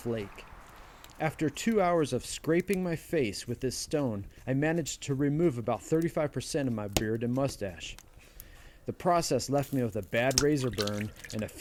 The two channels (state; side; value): identical; both; correlation 1.00